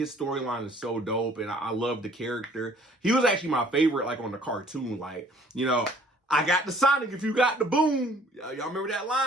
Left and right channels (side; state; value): both; normal; correlation 0.57